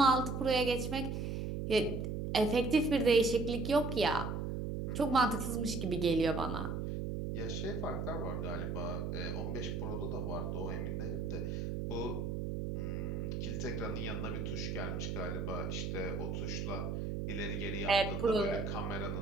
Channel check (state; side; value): noise; right; hum, 2 dB below the sound